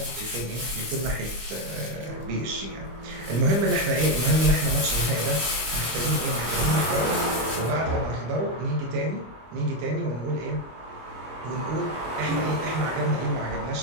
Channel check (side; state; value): left; late; 25 ms